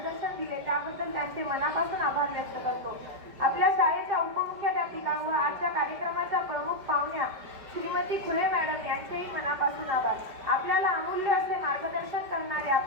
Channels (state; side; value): late; left; 5.1 ms